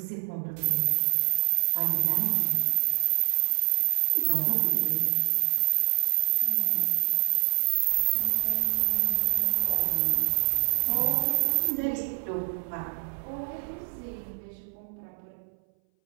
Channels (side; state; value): left; silent; 61 dB below the other